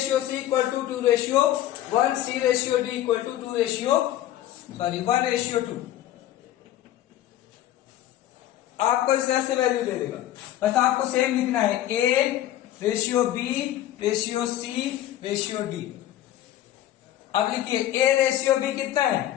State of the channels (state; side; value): quieter; right; 13.1 dB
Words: C equal to 2:1, C ratio D equal to 1:2। आपको इस तरह से value दे देगा, बस आपको same लिखना है A ratio B ratio C ratio D। अब लिखिए A रेशियो B कितना